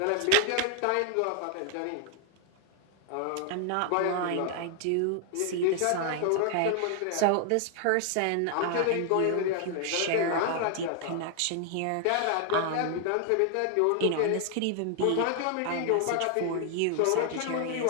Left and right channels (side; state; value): both; different; correlation 0.00